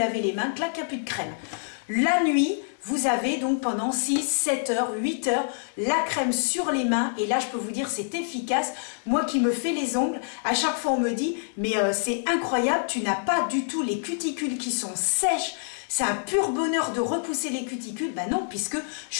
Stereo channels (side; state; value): right; silent; digital silence